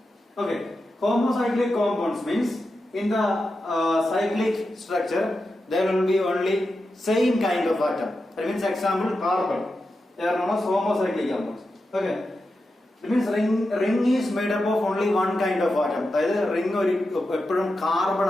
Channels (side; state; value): both; normal; correlation 0.90